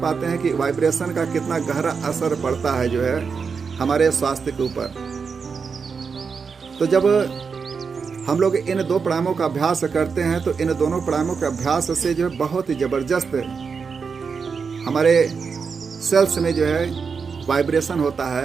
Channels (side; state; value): left; quieter; 5.5 dB